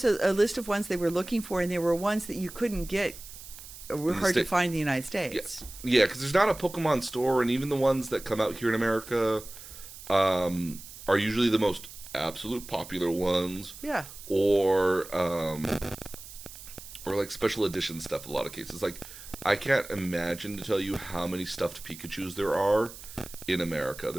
a list of ones they were looking for, and there were ones that you couldn't get. Were hard to find in the United States. Yes, yeah, because there's not a Pokemon store, and even the ones that come out here in America are usually the most absolute popular ones. Yeah. Or like special edition stuff. In a lot of cases, like I can't imagine to tell you how many stuffed Pikachus there are in America.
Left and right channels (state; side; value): noise; right; hiss, 15 dB below the sound